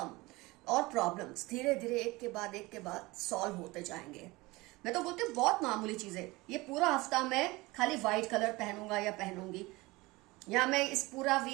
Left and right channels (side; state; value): left; quieter; 22.0 dB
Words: और प्रॉब्लम्स धीरे धीरे एक के बाद सॉल्व होते जाएंगे। मैं तो बोलती हूँ बहुत मामूली चीजें, ये पूरा हफ्ता मैं खाली व्हाइट कलर पहनूंगा या पहनूंगी, या मैं इस पूरा